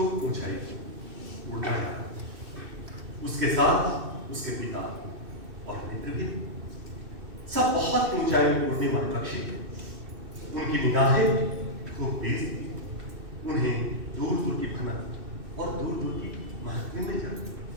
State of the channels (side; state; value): left; late; 2.6 ms